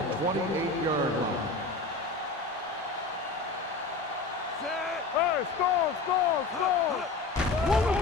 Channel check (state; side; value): quieter; right; 3.6 dB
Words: line. Hey, score. One of